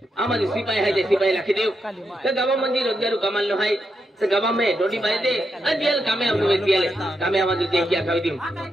आम्हाला सिपाही आहे ते सिपाही लाखी देऊ तर गावामध्ये रोजगार कमाल आहे तर गावामध्ये रोटी पाहिजे आणि दियाल कामे आम्हाला दियाले कामे आम्हाला ते क्या खावी देऊ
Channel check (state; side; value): normal; both; correlation 0.83